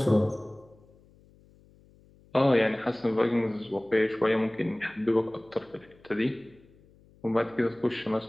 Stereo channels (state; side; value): noise; left; hum, 28 dB below the sound